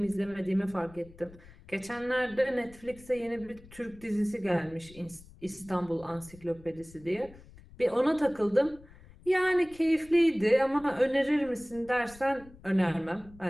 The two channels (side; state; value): left; noise; rumble, 22 dB below the sound